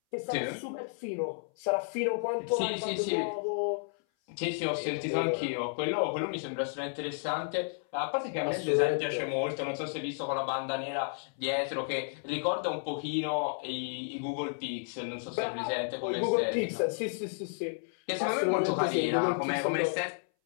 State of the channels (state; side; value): silent; right; 56 dB below the other